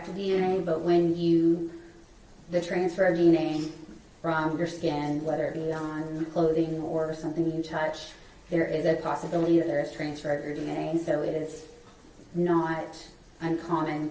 DNA, but when the transfer of DNA from your skin, whether it be on clothing or something you touch, there is a possibility that there is transfer of your DNA, so it is not uncommon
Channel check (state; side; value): identical; both; correlation 1.00